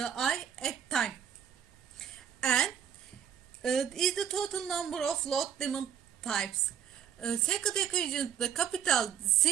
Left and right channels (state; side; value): quieter; left; 8.8 dB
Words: at time, and is the total number of load demand types. Second equation, the capital